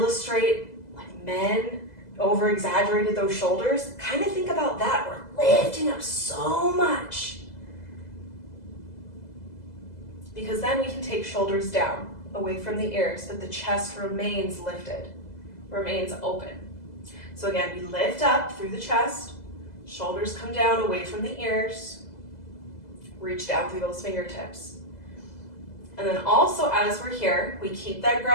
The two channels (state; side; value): late; right; 2.0 ms